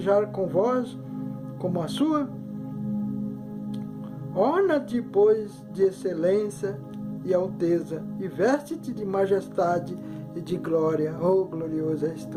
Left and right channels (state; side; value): identical; both; correlation 1.00